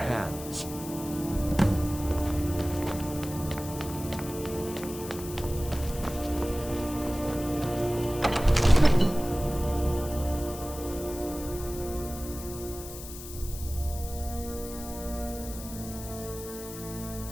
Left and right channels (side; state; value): left; noise; hiss, 12 dB below the sound